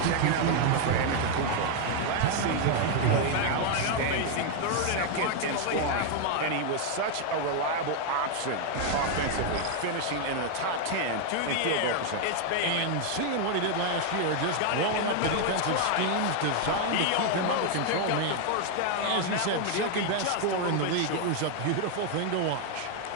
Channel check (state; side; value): different; both; correlation 0.00